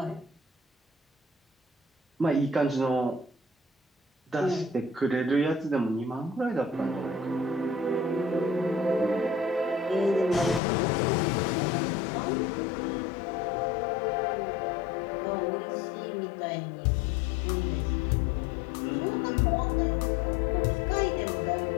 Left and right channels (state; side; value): drops out; right; at 10.6 s